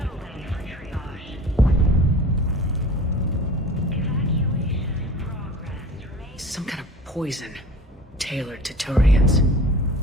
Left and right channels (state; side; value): normal; both; correlation 0.41